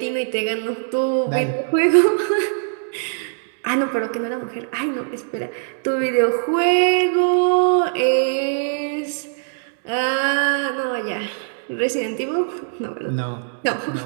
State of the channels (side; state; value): left; silent; 65 dB below the other